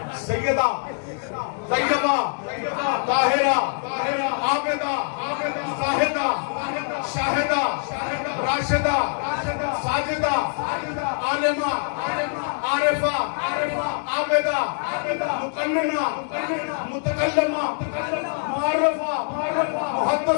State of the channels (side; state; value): right; silent; 57 dB below the other